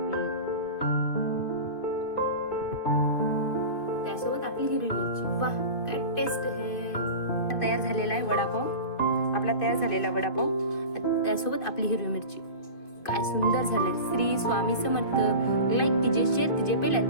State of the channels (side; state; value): right; late; 2.5 ms